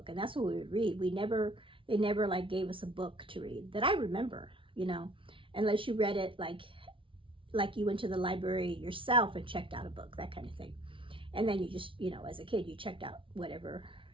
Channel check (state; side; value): late; left; 0.25 ms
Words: and that's what we would read. They never like gave us a book to read that I remember, you know, unless you read it like you went to the library yourself and checked out a book, that kind of thing. And then you just, you know, as a kid, you checked out whatever